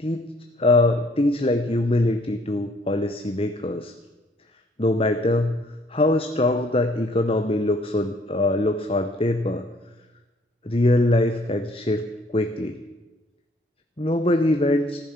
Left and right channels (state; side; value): normal; both; correlation 0.62